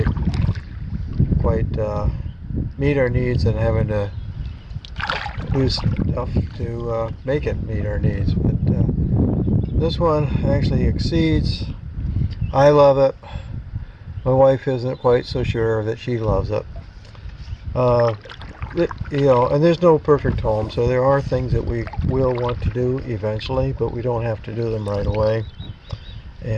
meet our needs and having to do stuff to make it meet our needs. But this one actually exceeds. I love it. My wife isn't quite so sure that she loves it. And there's no perfect home, so there are things that we will want to do eventually, but we don't have to do them right away.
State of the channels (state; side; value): identical; both; correlation 1.00